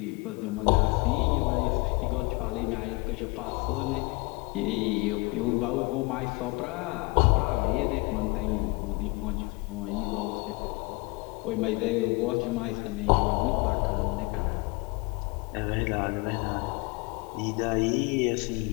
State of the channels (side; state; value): right; quieter; 26.3 dB